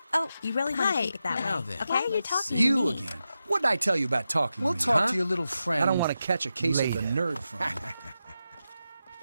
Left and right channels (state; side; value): inverted; both; correlation -0.89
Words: Oh, you really want to Hi. keep it that Now way? then, Okay, Why are you let's talking see. to You me? again. What did I tell you about talking We'll to me, talk huh? to your little friend. I don't want to catch a case later. of the nerd from you.